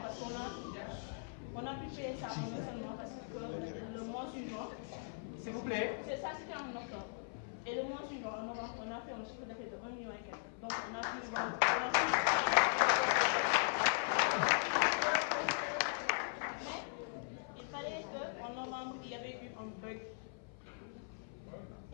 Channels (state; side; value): silent; right; 52 dB below the other